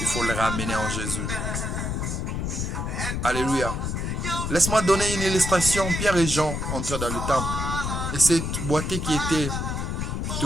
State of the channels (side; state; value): left; noise; rumble, 2 dB below the sound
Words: Il faut le ramener en Jésus. Alléluia. Laisse-moi donner une illustration. Pierre et Jean entraient dans le temple. Et cette boîtier qui était